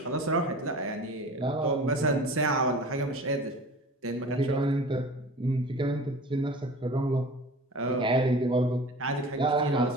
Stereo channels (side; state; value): both; normal; correlation 0.40